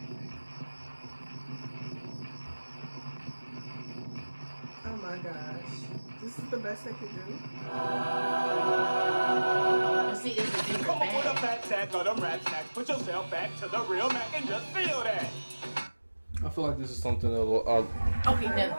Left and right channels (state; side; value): inverted; both; correlation -1.00